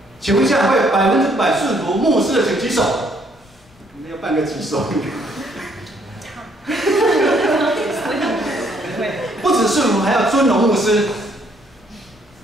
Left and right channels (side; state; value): left; noise; rumble, 28 dB below the sound